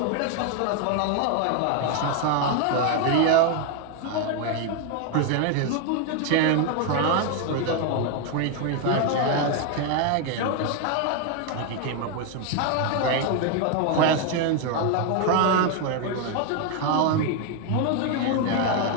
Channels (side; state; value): both; different; correlation 0.01